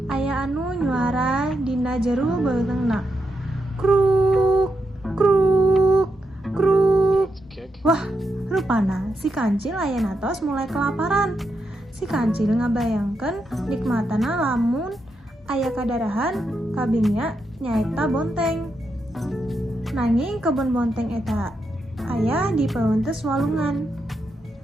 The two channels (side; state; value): both; normal; correlation 0.84